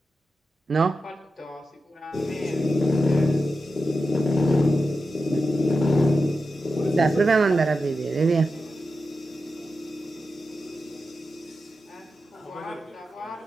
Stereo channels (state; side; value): normal; both; correlation 0.90